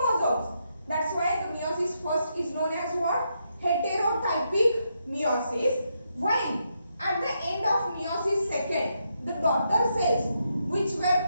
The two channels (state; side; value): inverted; both; correlation -0.80